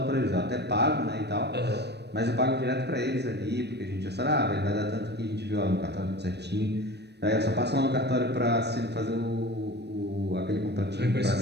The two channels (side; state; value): left; late; 0.49 ms